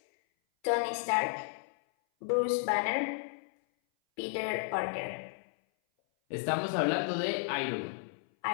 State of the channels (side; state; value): right; silent; 56 dB below the other